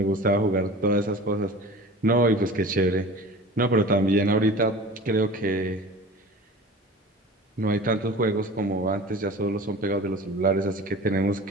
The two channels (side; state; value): both; normal; correlation 0.39